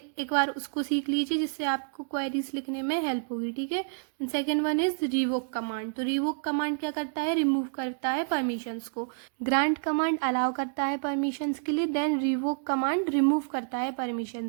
बार उसको सीख लीजिए जिससे आपको क्वेरीज लिखने में हेल्प होगी. ठीक है, second one is revoke command. तो रिवोक कमांड क्या करता है, रिमूव करता है परमिशंस को. ग्रांट कमांड अलाउ करता है परमिशंस के लिए, देन रिवोक कमांड रिमूव करता है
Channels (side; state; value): left; silent; digital silence